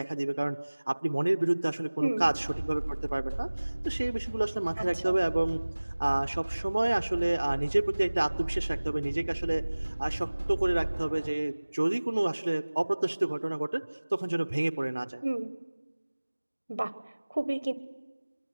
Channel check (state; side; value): inverted; both; correlation -1.00